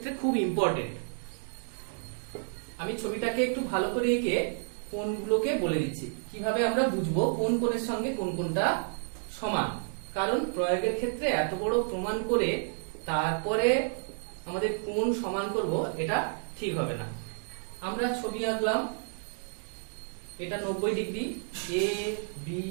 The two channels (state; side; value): silent; left; 57 dB below the other